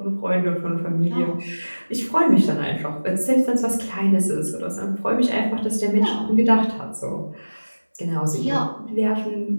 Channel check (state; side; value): inverted; both; correlation -1.00